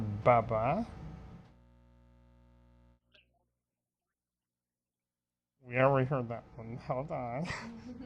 Bubba. Sound frequency. We already heard that one. Hold on.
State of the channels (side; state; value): both; identical; correlation 1.00